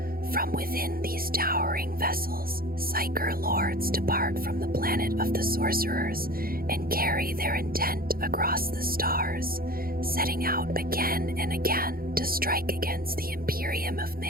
From within these towering vessels, Psyker lords depart from the planet of the sorcerers and carry their intent across the stars, setting out again and again to strike against the Imperium of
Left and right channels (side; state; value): left; late; 0.43 ms